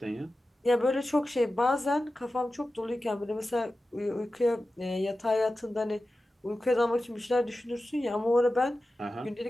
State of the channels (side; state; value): both; normal; correlation 0.94